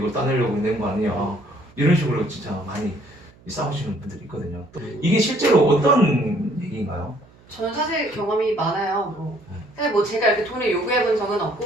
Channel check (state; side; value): noise; right; hum, 27 dB below the sound